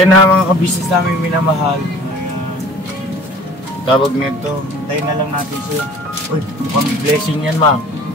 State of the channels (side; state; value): both; normal; correlation 0.48